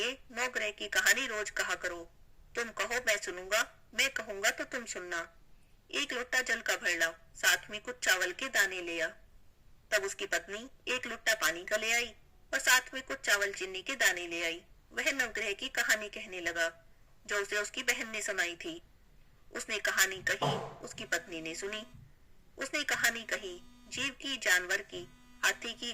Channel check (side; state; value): both; identical; correlation 1.00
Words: 9 ग्रह की कहानी रोज कहा करो, तुम कहो मैं सुनूंगा, मैं कहूंगा तो तुम सुनना। 1 लोटा जल का भर लाओ, साथ में कुछ चावल के दाने ले आ। तब उसकी पत्नी 1 लोटा पानी का ले आई और साथ में कुछ चावल चीनी के दाने ले आई। वह नवग्रह की कहानी कहने लगा जो उसे उसकी बहन ने सुनाई थी। उसने कहानी कही, उसकी पत्नी ने सुनी। उसने कहानी कही, जीव की, जानवर की, हाथी की,